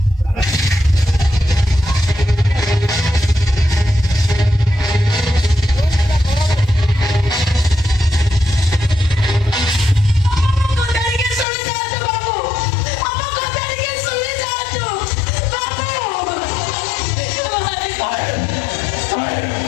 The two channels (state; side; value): drops out; right; at 11.5 s